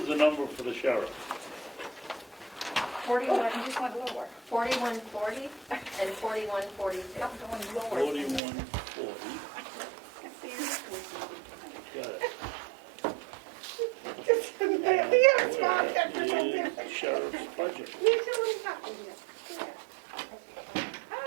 the number for the sheriff? 41, I just went lower. 4140 and 4142. I'm going lower. 4140. Got it. Here, small technical Where is difference. sheriff's budget? Usually happens here.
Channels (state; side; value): drops out; left; at 8.4 s